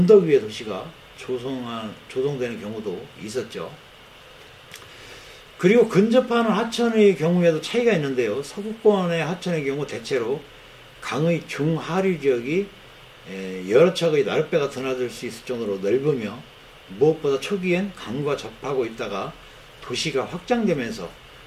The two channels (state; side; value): identical; both; correlation 1.00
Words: 위의 도시가 조성되는 경우도 있었죠. 그리고 근접하는 하천의 경우에도 차이가 있는데요. 서구권의 하천의 경우 대체로 강의 중하류 지역이 여러 척의 나룻배가 드나들 수 있을 정도로 넓으며 무엇보다 초기엔 강과 접하고 있다가 도시가 확장되면서